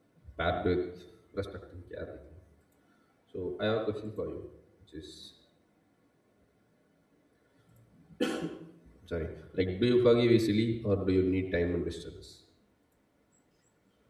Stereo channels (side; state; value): both; identical; correlation 1.00